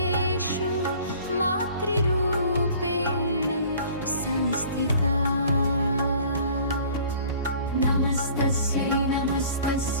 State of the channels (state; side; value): inverted; both; correlation -0.49